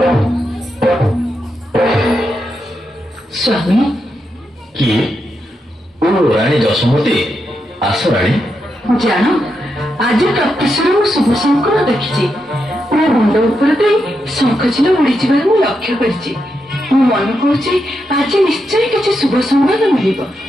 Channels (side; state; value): both; normal; correlation 0.84